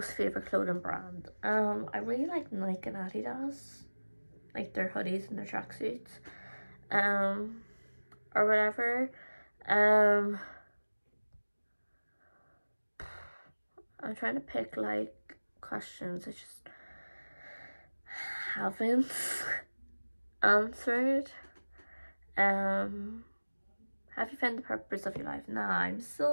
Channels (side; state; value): both; inverted; correlation -1.00